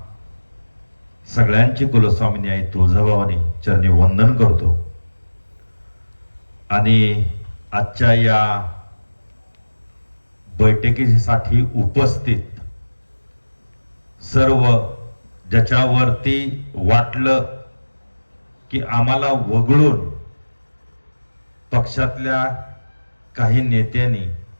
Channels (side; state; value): both; inverted; correlation -1.00